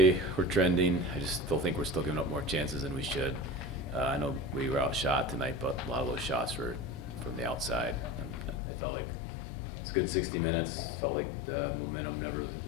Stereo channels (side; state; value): right; drops out; at 8.6 s